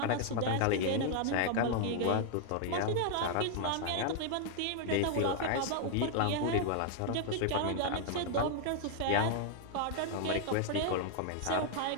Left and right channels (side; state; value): both; different; correlation 0.00